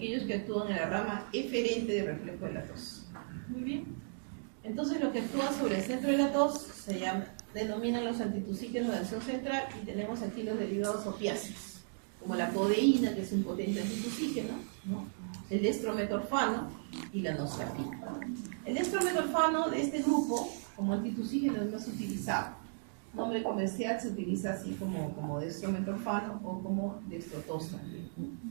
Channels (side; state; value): left; silent; digital silence